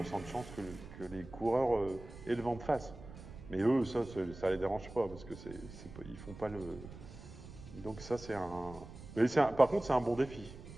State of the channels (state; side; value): noise; right; rumble, 15 dB below the sound